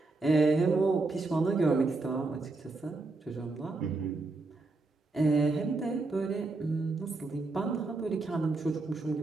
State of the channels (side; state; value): left; quieter; 3.4 dB